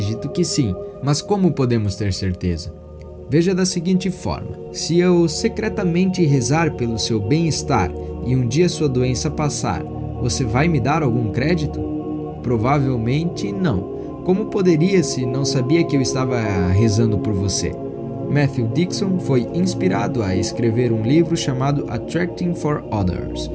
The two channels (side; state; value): both; identical; correlation 1.00